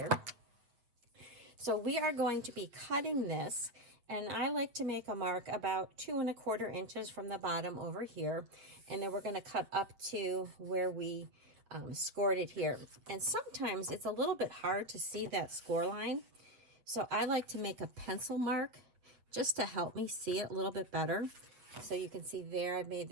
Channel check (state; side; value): late; left; 8.2 ms